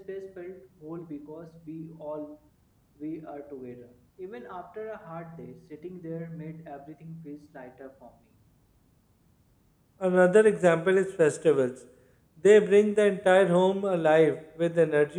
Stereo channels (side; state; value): both; identical; correlation 1.00